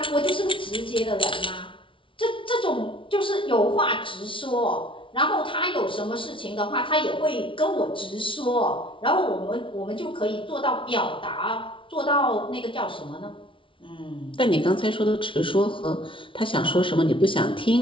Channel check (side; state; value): right; late; 0.25 ms